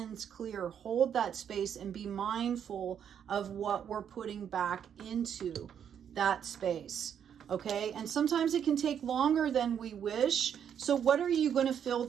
clear, hold that space, and be mindful of what we're putting back into that space. Okay, and sometimes it can take longer than we wish. So what are you going to fill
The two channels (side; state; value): left; quieter; 8.5 dB